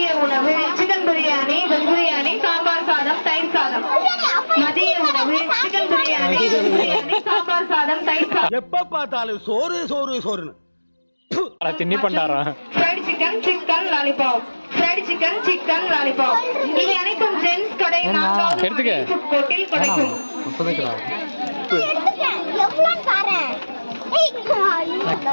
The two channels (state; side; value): inverted; both; correlation -1.00